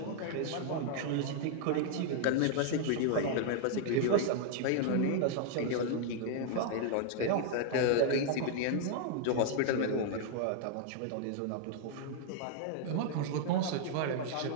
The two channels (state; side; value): different; both; correlation 0.00